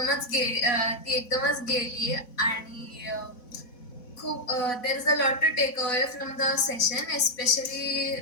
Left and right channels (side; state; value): right; late; 4.1 ms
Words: एकदमच गेली आणि खूप there is a lot to take away from the session especially